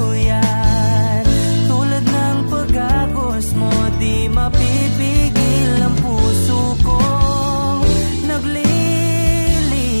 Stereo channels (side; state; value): both; inverted; correlation -1.00